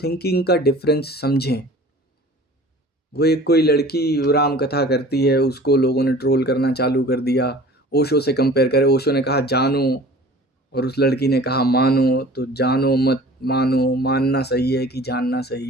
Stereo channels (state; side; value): normal; both; correlation 0.45